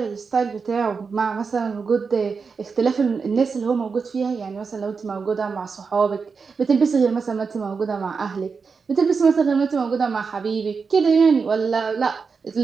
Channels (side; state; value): left; quieter; 5.2 dB